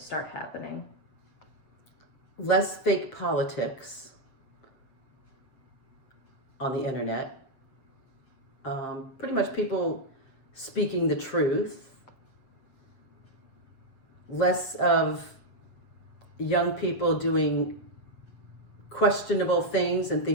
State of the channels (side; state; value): right; late; 7.6 ms